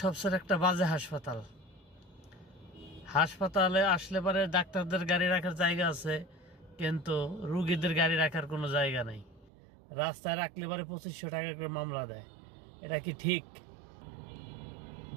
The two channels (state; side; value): drops out; left; at 9.5 s